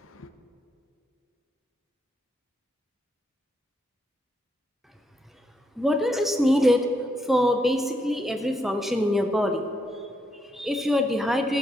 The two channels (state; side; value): normal; both; correlation 0.79